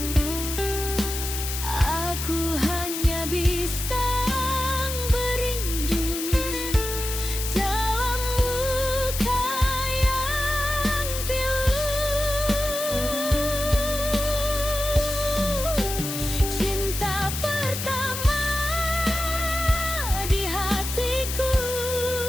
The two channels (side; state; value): left; noise; hiss, 5 dB below the sound